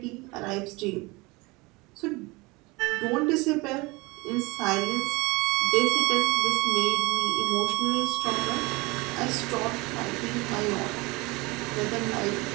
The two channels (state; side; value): quieter; left; 24.6 dB